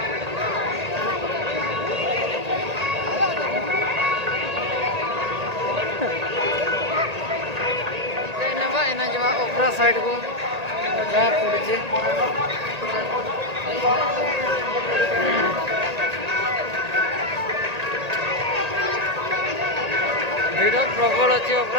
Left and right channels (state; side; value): late; left; 1.8 ms